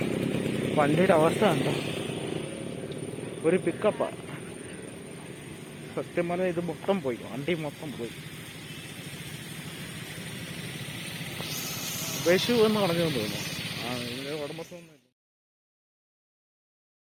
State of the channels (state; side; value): identical; both; correlation 1.00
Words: വണ്ടിയുടെ അവസ്ഥ കണ്ടോ, ഒരു പിക്കപ്പാ. സത്യം പറഞ്ഞാൽ ഇത് മൊത്തം പോയി, വണ്ടി മൊത്തം പോയി. വിഷു എന്ന് പറഞ്ഞു തോന്നുന്നു. ഇതിന്റെ ഉടമസ്ഥൊന്നും